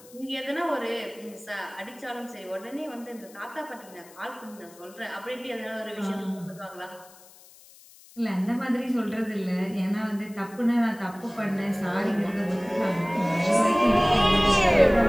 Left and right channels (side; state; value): left; noise; hiss, 23 dB below the sound